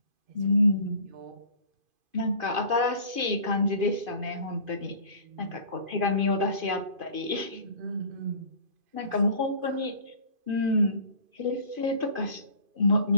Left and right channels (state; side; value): late; left; 2.5 ms